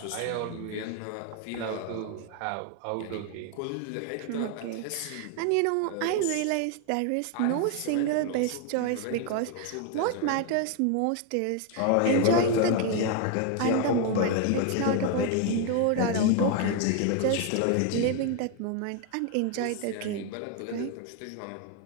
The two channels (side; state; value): both; different; correlation 0.01